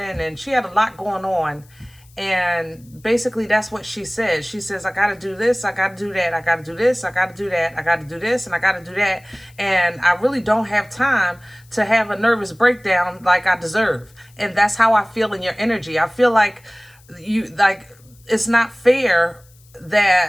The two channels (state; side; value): noise; left; hiss, 29 dB below the sound